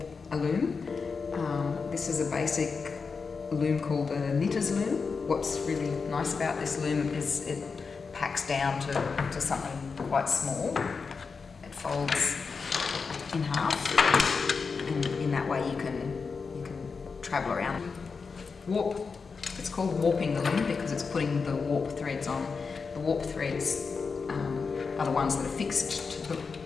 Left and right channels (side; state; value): right; quieter; 5.0 dB